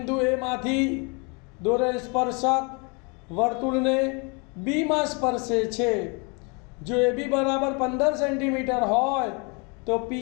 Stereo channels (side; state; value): right; quieter; 32.5 dB